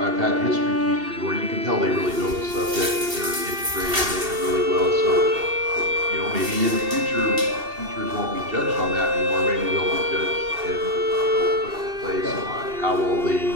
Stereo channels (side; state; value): left; late; 2.7 ms